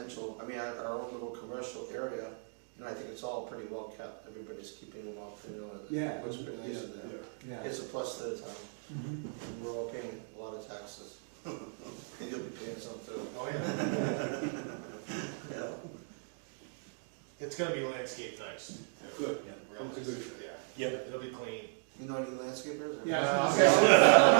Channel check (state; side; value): silent; left; 54 dB below the other